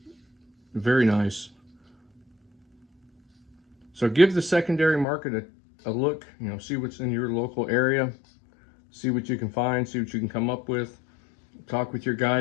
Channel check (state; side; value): drops out; right; at 5.1 s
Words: Very nice. So give the secondary market a look, see what's in your local area. See what you can find, see what you can come up with. Talk with your